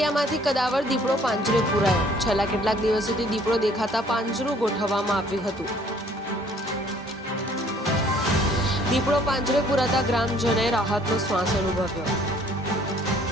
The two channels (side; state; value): both; normal; correlation 0.59